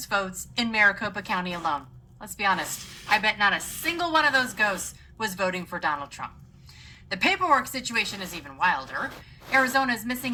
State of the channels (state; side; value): identical; both; correlation 1.00